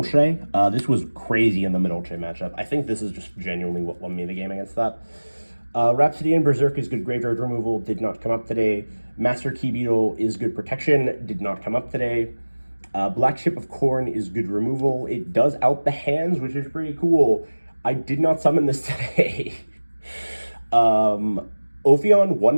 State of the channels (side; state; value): both; inverted; correlation -1.00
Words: This was crazy in the Madolche matchup. I think this is just genuinely what won me the game against that. Rhapsody and Berserk is good graveyard removal, did not come up today. Master Key Beetle is good protection, did not come up today. Black Chip of Corn is good removal. It does out the hands, which is pretty cool. I did not summon this today. Ophion won